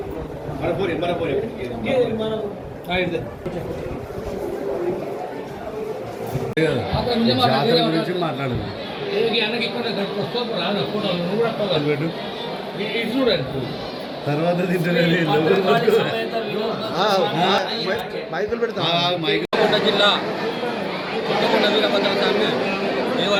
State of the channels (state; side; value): identical; both; correlation 1.00